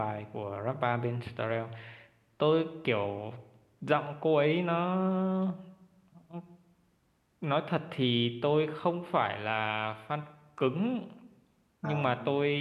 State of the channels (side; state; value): both; identical; correlation 1.00